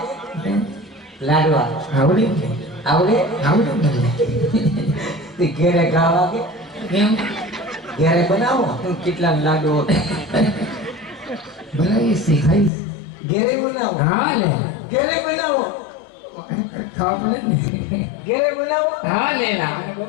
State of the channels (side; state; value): right; drops out; at 12.7 s